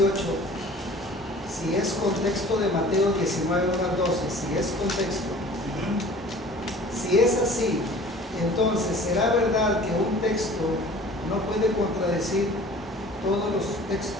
si es contexto de Mateo 19, 1 al 12, si es contexto, si es así, entonces ¿será verdad que un texto no puede contradecir todos los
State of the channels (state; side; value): normal; both; correlation 0.46